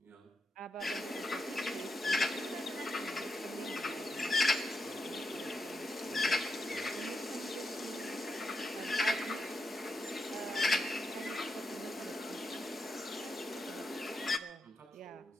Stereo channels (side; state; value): both; normal; correlation 0.84